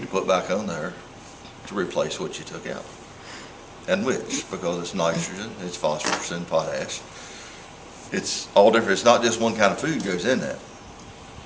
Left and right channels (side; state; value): both; identical; correlation 1.00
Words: to put back on there to replace what you took out. And which, because it's nitrogen, it's phosphorus and potash. It's all different. It's not just one kind of food goes in that.